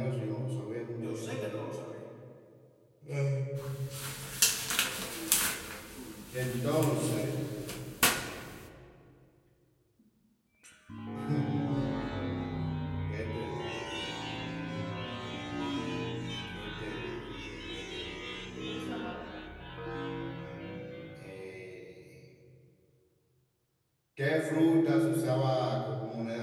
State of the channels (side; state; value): both; identical; correlation 1.00